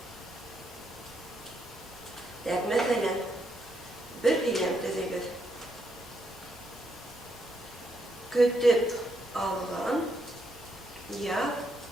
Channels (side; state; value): both; normal; correlation 0.78